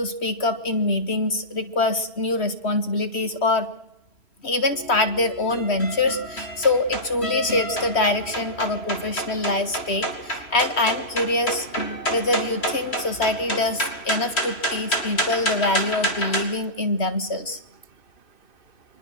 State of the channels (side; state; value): right; late; 3.1 ms